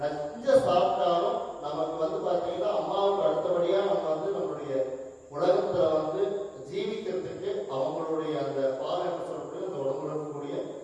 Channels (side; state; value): both; identical; correlation 1.00